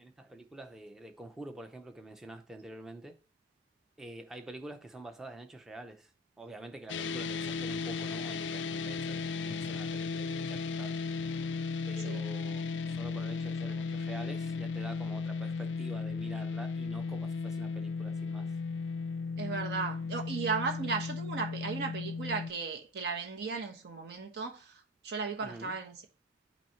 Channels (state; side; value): normal; both; correlation 0.42